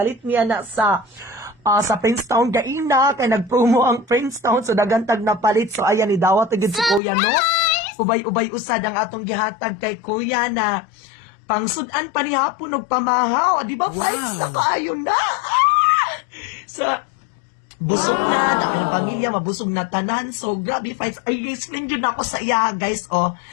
niya na sa Princetown gaina kay nagpromo ang Princetown so dagantag na palit. So ayan ni dawat gid si kuya no. Ubay-ubay usad ang atong gihatag kay kuya na pangsudan pa ni hapon og pamahaw. Di ba, fights na kaayo na? So, busog na, dami ng pamilya, mabusog na tanan. So, grabe, fights. Ay, explain yun ako sa iya, guys, oh.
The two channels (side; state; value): right; drops out; at 7.0 s